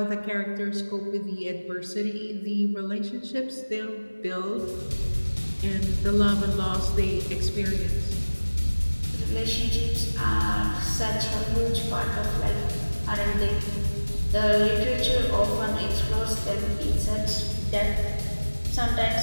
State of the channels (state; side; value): inverted; both; correlation -1.00